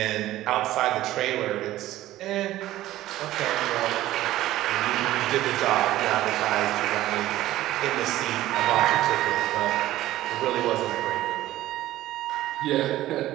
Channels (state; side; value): quieter; left; 15.0 dB